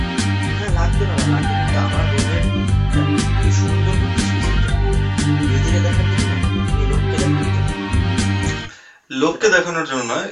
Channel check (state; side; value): identical; both; correlation 1.00